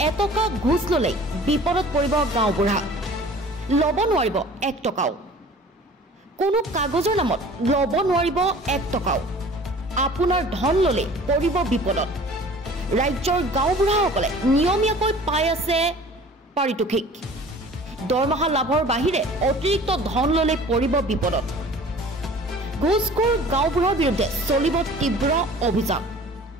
এটকা ঘুচ ল'লেই বিপদত পৰিব গাঁওবুঢ়া, ল'ব নোৱাৰিব 1 টকাও। কোনো কাগজৰ নামত ল'ব নোৱাৰিব 1 টকাও। আপোনাৰ ধন ল'লে পৰিব বিপদত। ৰাজ্যৰ গাঁওবুঢ়াসকলে নিয়মীয়াকৈ পাই আছে পাৰিতোষিক। দৰমহা লাভৰ বাহিৰে অতিৰিক্ত ধন ল'লে পৰিব বিপদত। ঘুচখোৰ গাঁওবুঢ়াৰ বিৰুদ্ধে চলিব তীব্ৰ অভিযান।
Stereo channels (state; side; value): normal; both; correlation 0.46